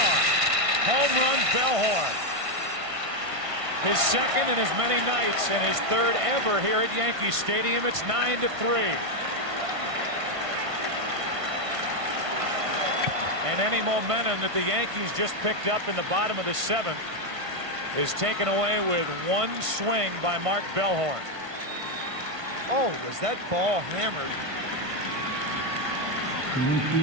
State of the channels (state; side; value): late; left; 1.5 ms